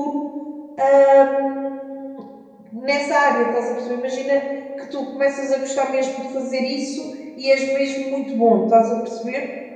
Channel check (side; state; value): both; identical; correlation 1.00